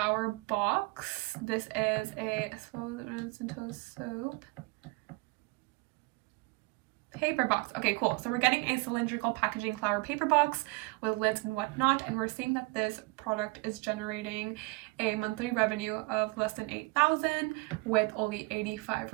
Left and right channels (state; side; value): quieter; left; 26.0 dB